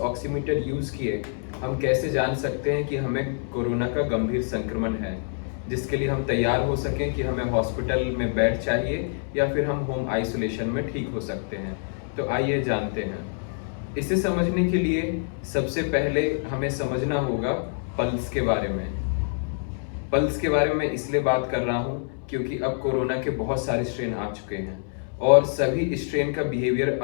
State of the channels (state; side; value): silent; right; 61 dB below the other